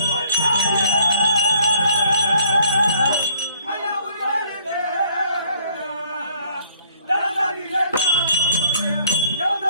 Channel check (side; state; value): both; inverted; correlation -0.61